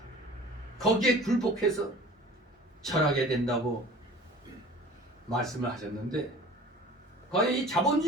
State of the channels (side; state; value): both; normal; correlation 0.43